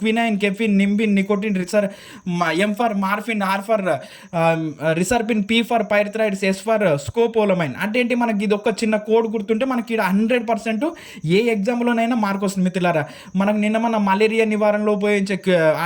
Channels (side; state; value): both; identical; correlation 1.00